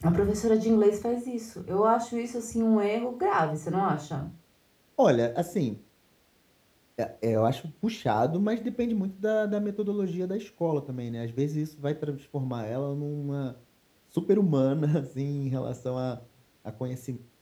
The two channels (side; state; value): both; identical; correlation 1.00